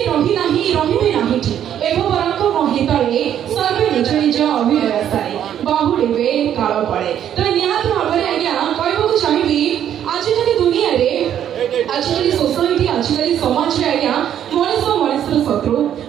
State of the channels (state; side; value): quieter; left; 10.1 dB